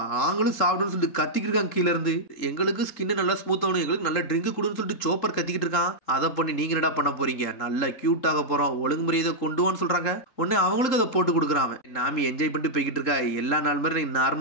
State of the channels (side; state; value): right; late; 3.7 ms